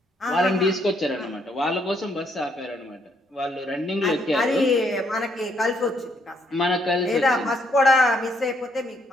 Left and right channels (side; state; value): both; normal; correlation 0.71